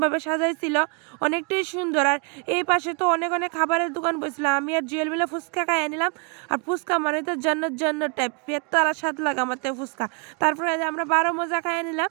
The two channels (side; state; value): left; quieter; 37.0 dB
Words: সাজাইছিল, অনেকটাই সুন্দর। আর এই পাশে তো অনেক অনেক খাবারের দোকান বসছিল। আমি আর জুয়েল মিলে ফুচকা খাইয়ে নিলাম। আর ফুচকা মানে তো জন্নত টাইপ, পেট তারা স্বাদ লাগে আমার তো ফুচকা। তারপরে আমরা 12 মজা খাইয়ে নিলাম।